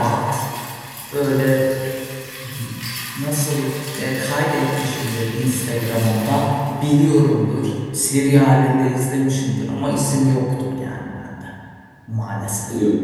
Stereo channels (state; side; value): identical; both; correlation 1.00